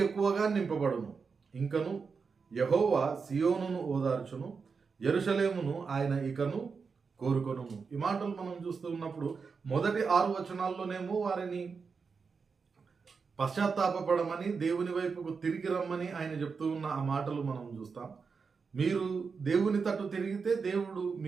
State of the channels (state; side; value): quieter; left; 5.3 dB